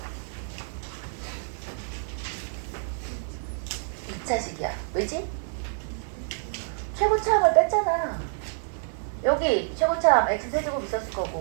2차식이야. 왜지? 최고차항을 뺐잖아. 여기 최고차항 x세제곱 있었을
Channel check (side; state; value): left; silent; digital silence